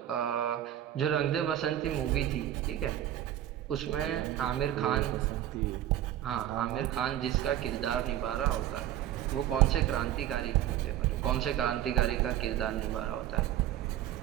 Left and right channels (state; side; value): quieter; left; 12.2 dB